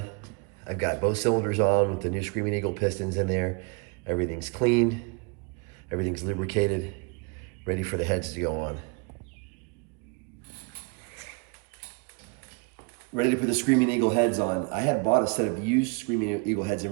I've got both cylinders on with the new Screaming Eagle pistons in there. Everything's cleaned, everything's lubricated, ready for the heads to go on. Ready to put the Screaming Eagle heads on. I had bought a set of used Screaming Eagle heads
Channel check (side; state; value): left; quieter; 32.4 dB